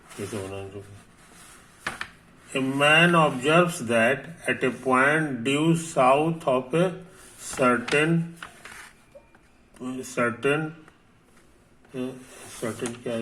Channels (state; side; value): identical; both; correlation 1.00